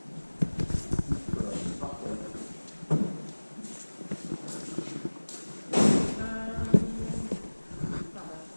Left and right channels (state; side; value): inverted; both; correlation -1.00